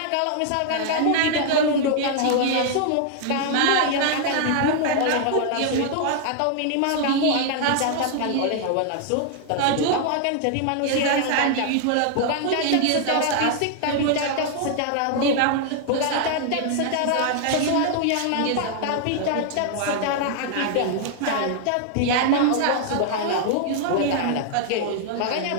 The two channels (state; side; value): different; both; correlation 0.00